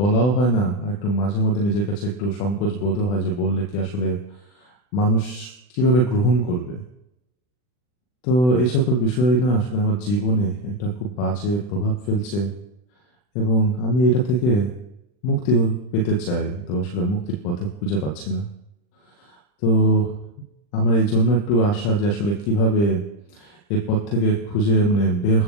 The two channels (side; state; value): right; late; 40 ms